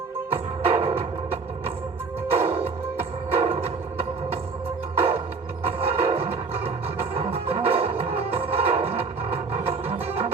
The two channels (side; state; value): left; quieter; 4.6 dB